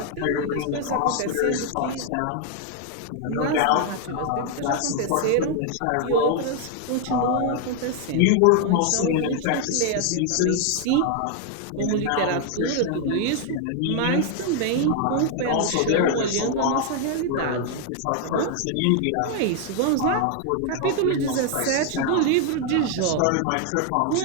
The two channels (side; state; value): both; different; correlation 0.00